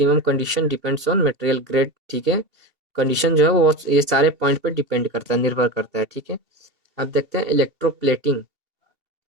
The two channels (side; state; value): left; late; 2.8 ms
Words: condition depends on material grade. ठीक है, कंडीशन जो है वो ये सारे पॉइंट पे डिपेंड करता है, निर्भर करता है। ठीक है, अब देखते हैं इलेक्ट्रोप्लेटिंग।